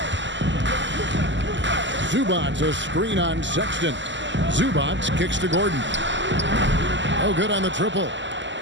Zubac, a screen on Sexton. Zubac kicks to Gordon. Oh, good on the triple.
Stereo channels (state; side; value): late; left; 0.54 ms